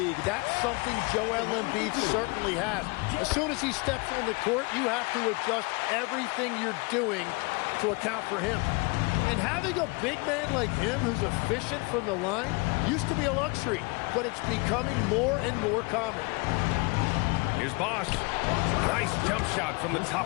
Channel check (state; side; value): quieter; right; 28.8 dB